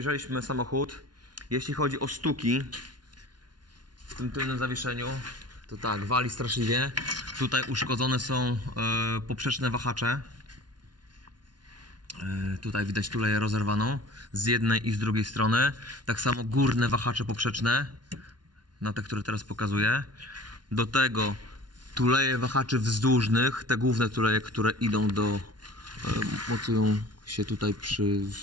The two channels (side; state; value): left; late; 0.70 ms